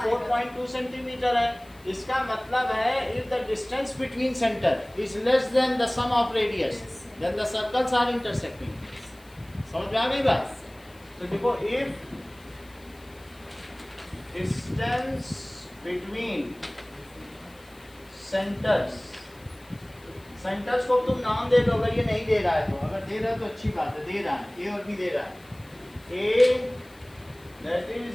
4.2 सेंटीमीटर है, इसका मतलब है if the distance between centre is less than the sum of radius then the circles are intersecting. समझ में आ गई बात? तो देखो, if distance between centres, centres को तुम नाम दे दो अगर ये नहीं दे रहा है तो। अगर दे रहा है तो अच्छी बात है, दे रहा है, ए और बी दे रहा है। ए दैट इज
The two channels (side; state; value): left; noise; hiss, 27 dB below the sound